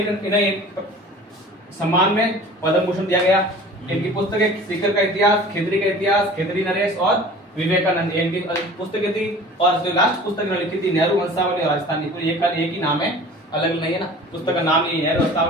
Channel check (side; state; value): both; normal; correlation 0.43